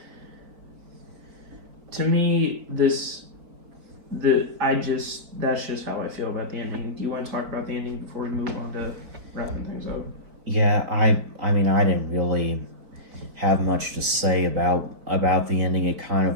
to me, that's just how I feel about the ending. Do you want to talk about the ending before we move on to wrapping things up? Yeah, I mean, I didn't really have much to say about the ending. It kind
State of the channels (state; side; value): late; left; 4.6 ms